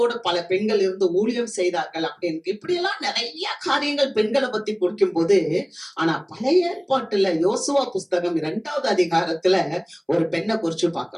பல பெண்கள் இருந்து ஊழியம் செய்தார்கள் அப்படின்னு. இப்படி எல்லாம் நிறைய காரியங்கள் பெண்களை பத்தி குறிக்கும் போது, ஆனா பழைய ஏற்பாட்டுல யோசுவா புஸ்தகம் 2வது அதிகாரத்துல ஒரு பெண்ணை குறிச்சு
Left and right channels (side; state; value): both; identical; correlation 1.00